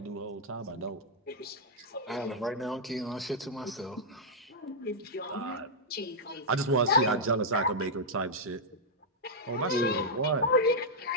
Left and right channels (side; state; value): both; normal; correlation -0.07